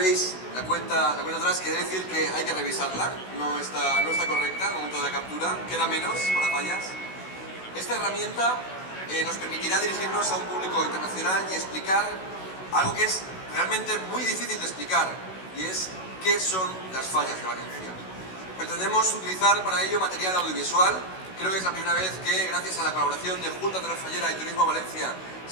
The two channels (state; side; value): late; right; 16 ms